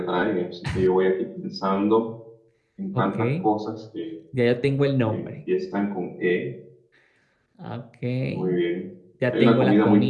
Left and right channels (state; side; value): identical; both; correlation 1.00